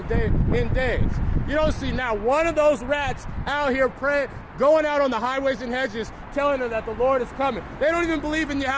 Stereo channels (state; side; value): identical; both; correlation 1.00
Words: days? You don't see not one of those rats out here praying, going out on the highways and hedges, telling them that the Lord is coming. They don't even believe in